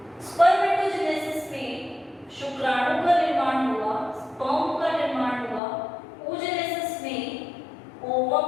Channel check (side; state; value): right; drops out; at 5.6 s